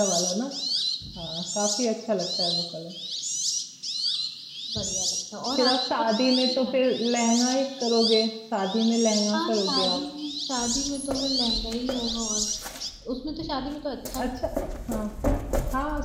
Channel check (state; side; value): identical; both; correlation 1.00